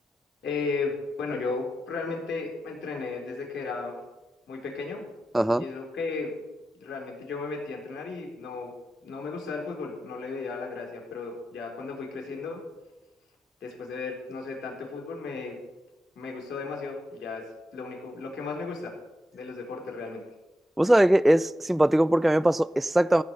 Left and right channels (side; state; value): both; normal; correlation 0.90